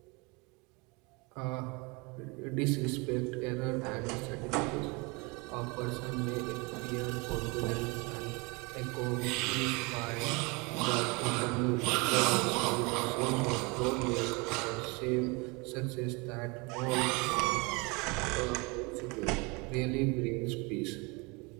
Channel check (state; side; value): quieter; left; 28.2 dB